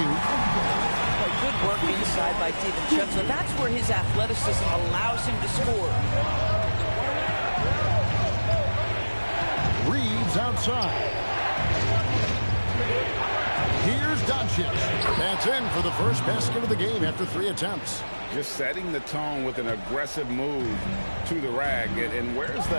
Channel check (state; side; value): inverted; both; correlation -1.00